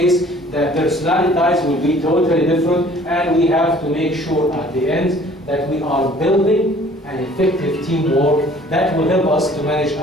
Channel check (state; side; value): normal; both; correlation 0.53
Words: the personalities will be totally different, and we have to make sure at the end that we are building an effective teamwork that will help us to manage